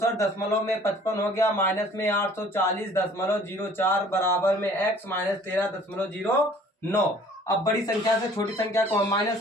हो गया, माइनस में 840.04 बराबर में x माइनस 13.09। अब बड़ी संख्या से छोटी संख्या को हम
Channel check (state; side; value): normal; both; correlation 0.53